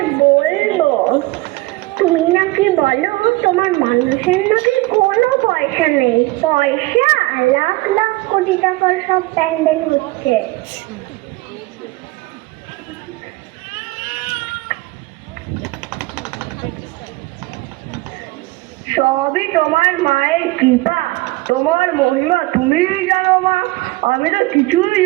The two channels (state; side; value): quieter; left; 21.1 dB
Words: বলবো। তুমি নাকি বলো তোমার মানুষের নাকি কোনো পয়সা নেই, পয়সা লাখ লাখ কোটি টাকার সব প্যান্ডেল হচ্ছে। সবই তোমার মায়ের কৃপা, তোমার মহিমা তুমিই জানো মা, আমি তো কিছুই